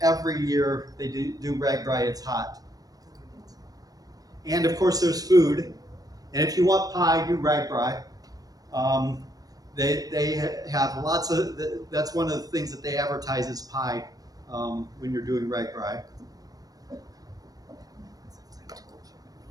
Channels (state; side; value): late; left; 0.18 ms